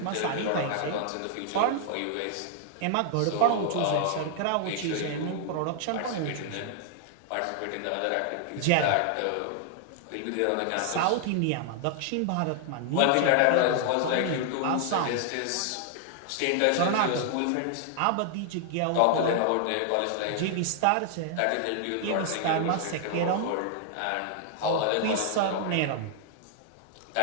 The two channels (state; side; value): different; both; correlation 0.00